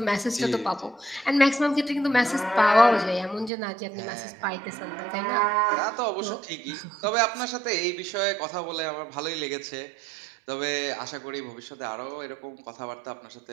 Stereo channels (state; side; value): drops out; left; at 3.5 s